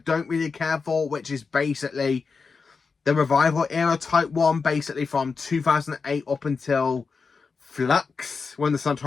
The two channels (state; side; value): quieter; right; 4.9 dB